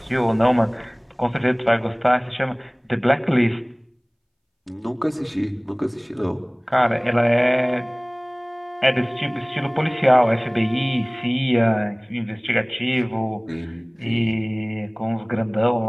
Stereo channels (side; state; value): both; identical; correlation 1.00